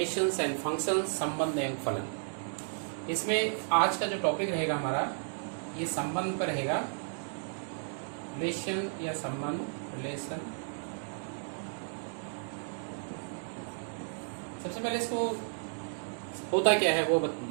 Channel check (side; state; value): left; silent; digital silence